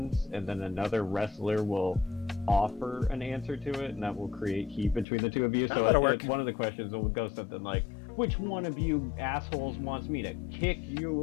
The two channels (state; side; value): drops out; right; at 5.1 s